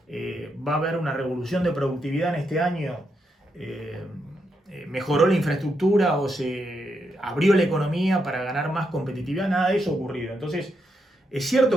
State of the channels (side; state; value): both; normal; correlation 0.81